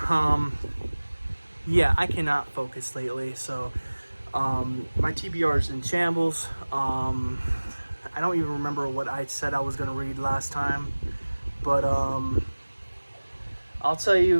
Yeah, I cannot focus lately, so my TBR is in shambles. I don't even remember what I said I was gonna read last time, but I'll tell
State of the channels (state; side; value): inverted; both; correlation -1.00